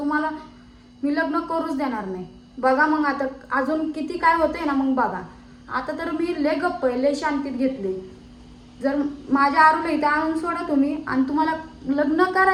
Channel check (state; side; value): identical; both; correlation 1.00